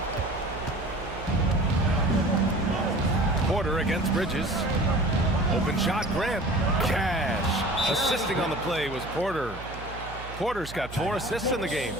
Porter against Bridges. Open shot, Grant. Cash. Assisting on the play was Porter. Porter's got 4 assists in the game.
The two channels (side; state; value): right; noise; hum, 13 dB below the sound